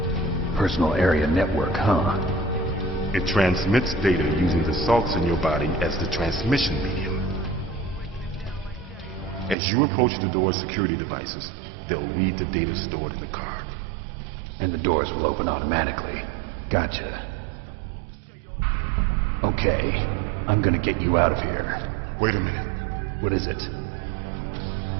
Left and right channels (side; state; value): left; drops out; at 9.6 s